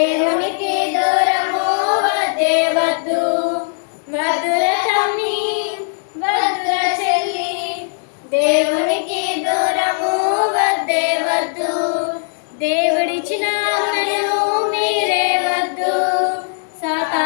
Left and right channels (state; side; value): silent; right; digital silence